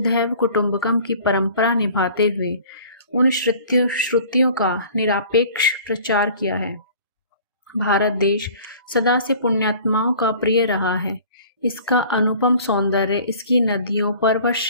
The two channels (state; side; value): inverted; both; correlation -0.47